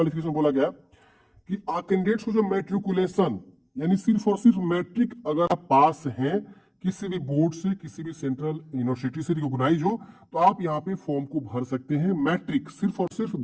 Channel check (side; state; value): both; identical; correlation 1.00